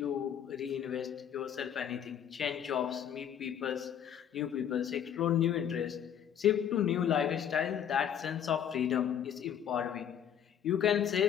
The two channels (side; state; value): right; quieter; 9.2 dB